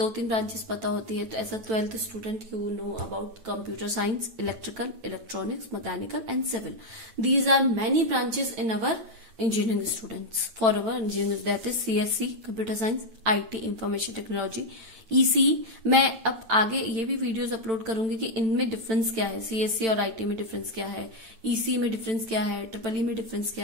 ब्रांचेस पता होती है, तो as a 12th student you know about computer science, electrical, electronics, mechanical and civil. These are many branches in our engineering students. For our engineering, that is CSC, computer science, IT, information technology, EC। मैं अब आगे ये भी videos upload करूंगी कि इनमें difference क्या है, CSC और IT में डिफरेंस क्या है, EC में डिफरेंस क्या है, EEE में डिफरेंस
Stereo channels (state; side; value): late; left; 8.9 ms